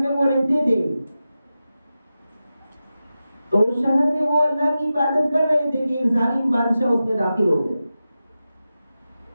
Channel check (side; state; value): both; inverted; correlation -0.92